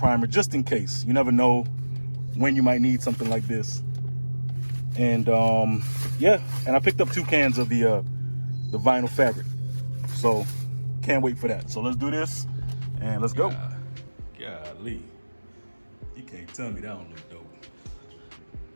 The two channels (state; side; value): inverted; both; correlation -1.00